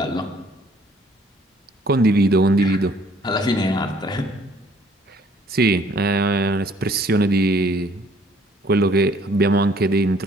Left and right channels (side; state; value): both; normal; correlation 0.60